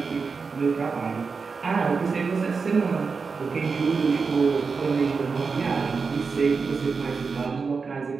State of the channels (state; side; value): quieter; left; 4.9 dB